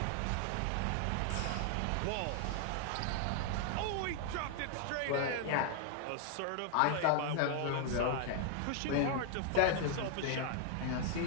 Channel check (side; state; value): both; different; correlation 0.00